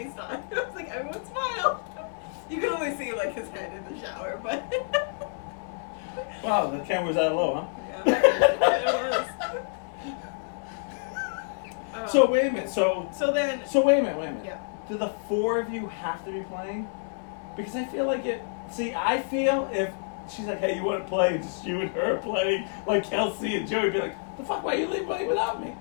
I was like, everyone smile. You can only see like his head in the shower, but Wow, the camera's that low, huh? yeah, it was. So wait a minute. So then, wait a minute. yeah. Do the four of you have to be playing? Because I feel like it. See, I feel if she's like, "Hey, you want to play?" It's just you and her playing, like Kelsey and Joey, be like, "The fuck? Why you leave playing without me?"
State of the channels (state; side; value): silent; right; digital silence